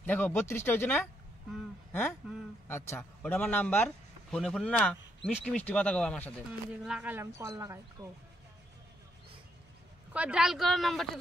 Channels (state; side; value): normal; both; correlation 0.75